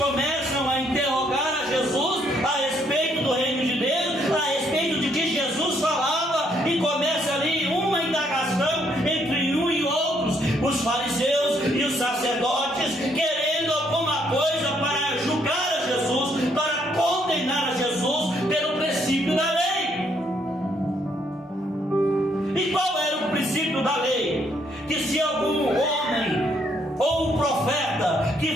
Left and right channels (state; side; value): normal; both; correlation 0.70